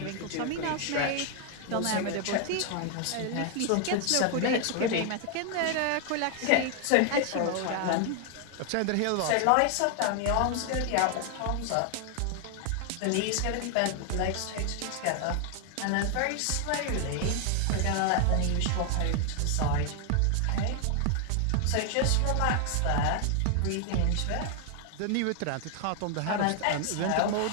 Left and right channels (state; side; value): different; both; correlation 0.00